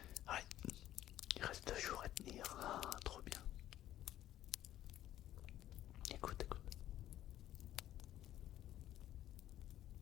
Ouais, il reste 2 jours à tenir. Ah, trop bien. Écoute, écoute.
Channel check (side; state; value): right; quieter; 12.8 dB